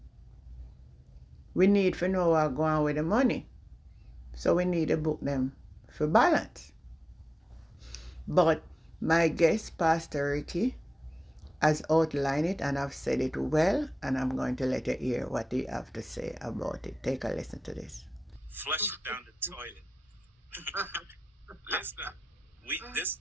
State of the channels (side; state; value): both; normal; correlation 0.95